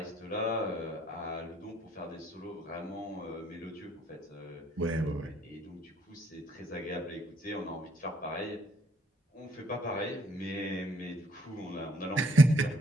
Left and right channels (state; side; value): normal; both; correlation 0.66